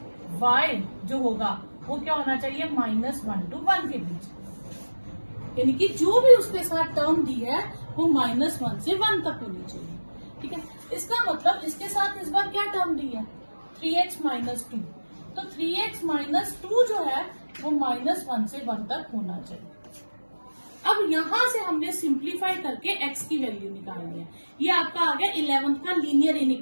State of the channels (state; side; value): inverted; both; correlation -1.00